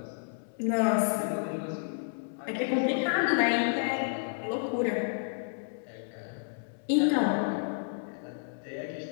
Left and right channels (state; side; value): silent; right; digital silence